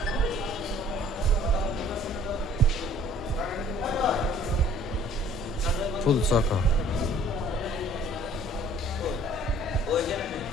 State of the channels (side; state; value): both; normal; correlation 0.54